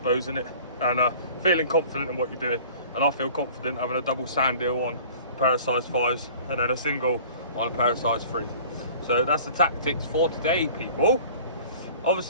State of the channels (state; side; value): inverted; both; correlation -0.46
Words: isn't it? And feeling confident in what you're doing. And I feel confident having a double sand eel on a pair of size 5s and then a single on a pair of size 3s. So that's the tactics for today, people.